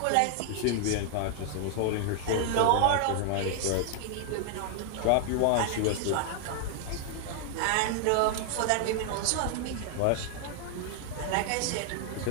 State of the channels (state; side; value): different; both; correlation 0.00